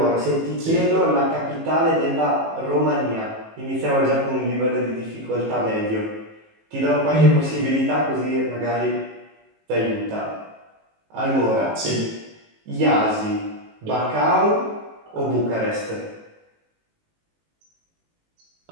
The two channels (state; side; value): late; left; 19 ms